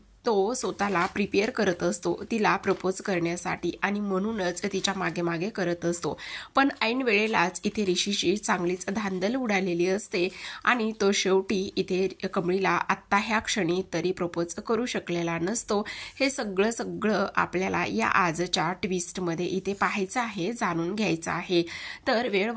तो स्वतःला प्रिपेअर करत असतो तिला प्रपोज करण्यासाठी आणि म्हणूनच तिच्या मागे मागे करत असतो। पण ऐन वेळेलाच इथे ऋषीची चांगलीच धांदल उडालेली असते आणि तो शेवटी इथे कमळीला आत्ता ह्या क्षणी तरी प्रपोज करू शकलेला नसतो। हे सगळं आपल्याला या आजच्या ट्विस्टमध्ये इथे पाहायचं आहे, जाणून घ्यायचं आहे। तर वेळ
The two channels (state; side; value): identical; both; correlation 1.00